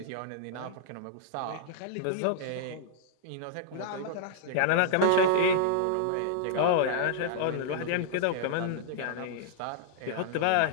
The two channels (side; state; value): both; different; correlation -0.01